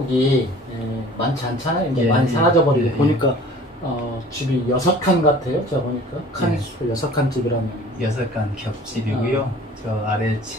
많지 않잖아요. 이제 많이 사라져버리고 보니까 집이 6칸 같아요. 제가 보니까 칸이 6칸 집이라면 6칸 겹집이고요. 저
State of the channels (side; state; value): both; normal; correlation 0.47